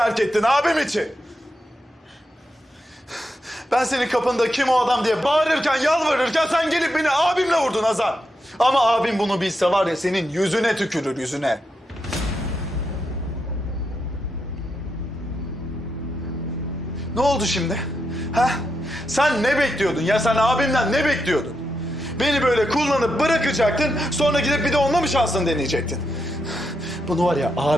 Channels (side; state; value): both; normal; correlation 0.84